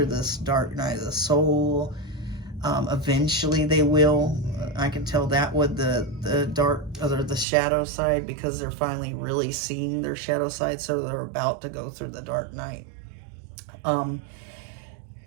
this dark night of the soul. Eventually they will. I can tell that with the dark, or the shadow side, because they're finally really seeing their shadow side, so they're about to go through the dark night.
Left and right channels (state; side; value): drops out; left; at 7.5 s